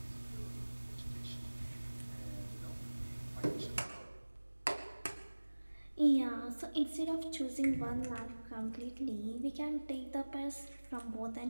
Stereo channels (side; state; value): both; inverted; correlation -1.00